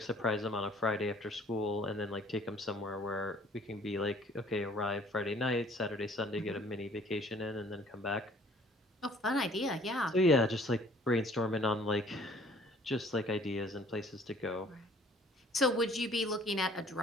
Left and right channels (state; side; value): normal; both; correlation 0.55